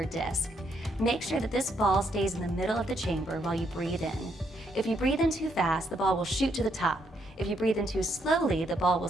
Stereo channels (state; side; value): normal; both; correlation 0.74